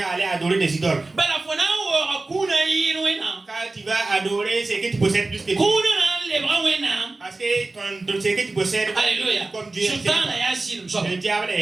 à aller adorer des idoles. Quand tu vas adorer ce que tu possèdes plus que Dieu. Parce que ce que tu possèdes, comme Dieu, le diable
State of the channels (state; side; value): quieter; left; 3.3 dB